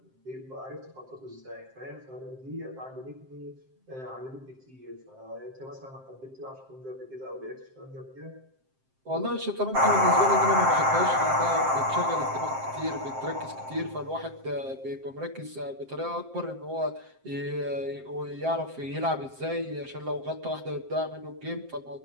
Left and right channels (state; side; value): late; left; 7.6 ms